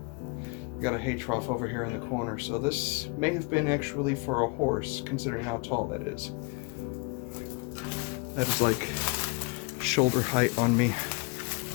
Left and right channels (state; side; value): quieter; right; 29.5 dB